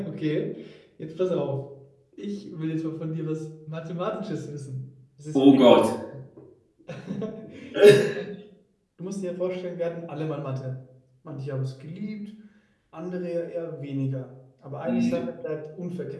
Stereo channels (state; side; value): identical; both; correlation 1.00